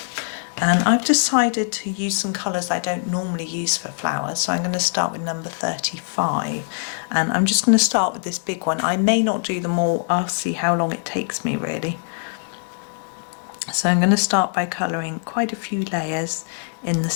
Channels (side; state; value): right; silent; 64 dB below the other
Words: and I've decided to use some colours I don't normally use for flowers, so I'm going to start with number 35, and I'm just going to start with this big one. I may not do them all, I'll see how long it takes me really. So I'm going to start by colouring quite a few layers in the